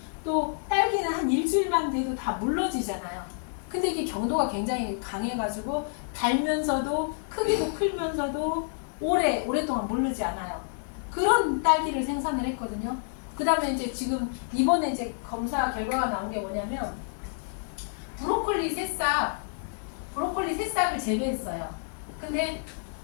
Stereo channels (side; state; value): right; silent; 59 dB below the other